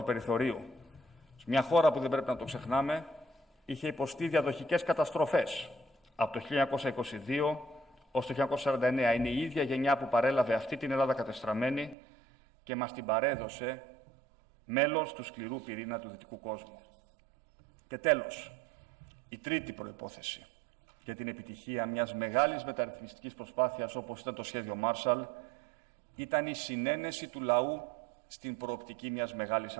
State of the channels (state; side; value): drops out; left; at 12.0 s